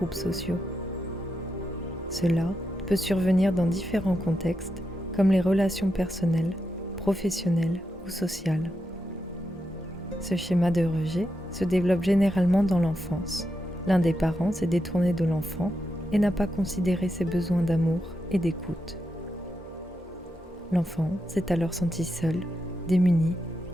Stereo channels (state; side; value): normal; both; correlation 0.85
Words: sociaux. Cela peut survenir dans différents contextes comme les relations personnelles, professionnelles ou sociales. Ce schéma de rejet se développe généralement dans l'enfance. L'un des parents s'est détourné de l'enfant et n'a pas considéré ses besoins d'amour et d'écoute. L'enfant s'est alors senti seul, démuni